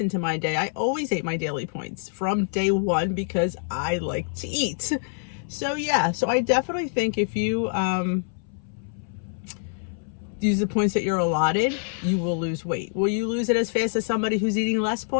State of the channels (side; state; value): right; silent; 61 dB below the other